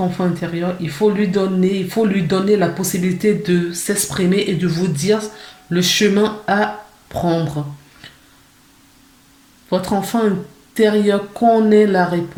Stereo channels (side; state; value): both; identical; correlation 1.00